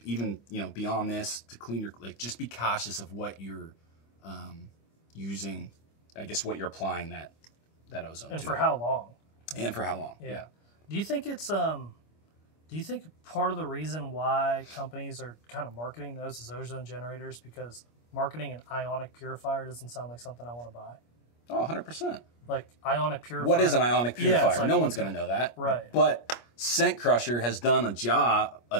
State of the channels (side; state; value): right; late; 25 ms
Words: even, you know, beyond this to clean your, like, just be cautious of what you're using. I guess what you're applying that ozone to. And for how long? And for how long? Yeah. Do you think it's do you think part of the reason why companies are kind of marketing those as ozone generators because marketing an ionic purifier doesn't sound like something I want to buy? Oh, 100%. Like ionic purifier. What is an ionic purifier? Like, no one's going to know that. Right. But Scent Crusher has done a job,